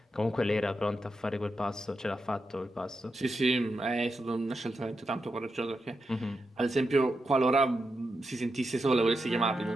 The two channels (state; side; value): normal; both; correlation 0.87